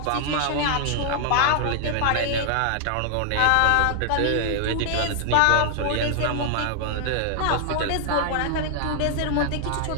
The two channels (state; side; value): different; both; correlation 0.00